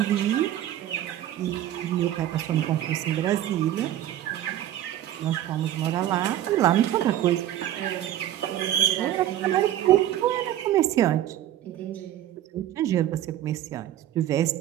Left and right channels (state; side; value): quieter; left; 12.4 dB